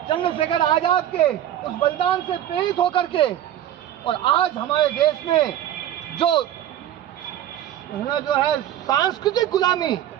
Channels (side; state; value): left; quieter; 11.6 dB